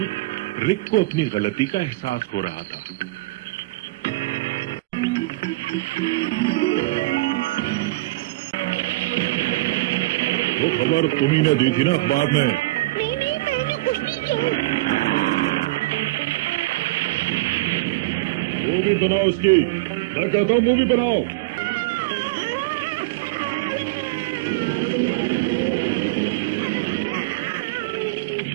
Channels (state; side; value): quieter; left; 21.3 dB